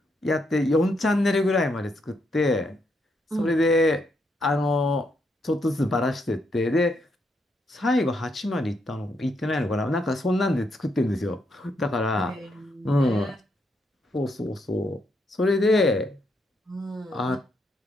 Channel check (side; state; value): both; normal; correlation 0.77